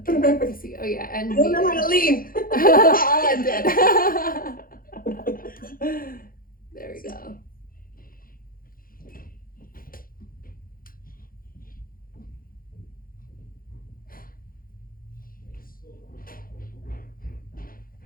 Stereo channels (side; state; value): right; late; 0.42 ms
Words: Okay, let's see. Oh, yeah, and I don't know how to leave. I'll end it.